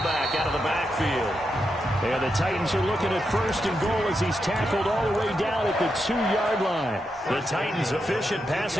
out of the backfield. And the Titans are looking at 1st and goal as he's tackled all the way down at the 2-yard line. The Titans efficient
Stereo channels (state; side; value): normal; both; correlation 0.85